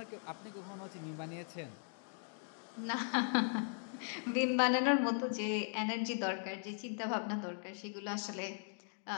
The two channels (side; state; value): right; silent; 52 dB below the other